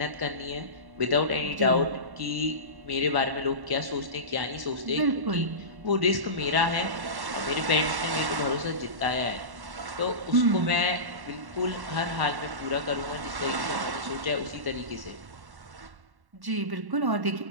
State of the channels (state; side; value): late; left; 1.1 ms